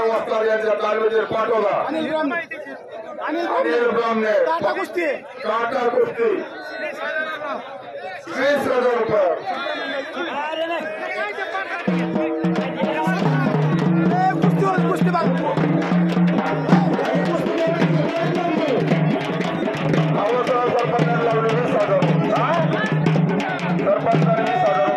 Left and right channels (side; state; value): both; identical; correlation 1.00